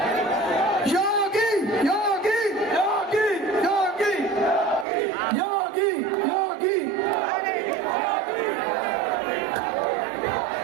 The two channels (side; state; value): left; drops out; at 4.9 s